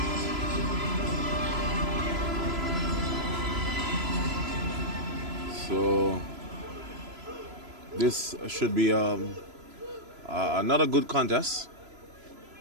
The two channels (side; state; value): left; late; 3.0 ms